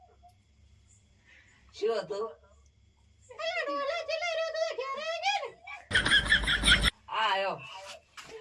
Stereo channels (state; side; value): identical; both; correlation 1.00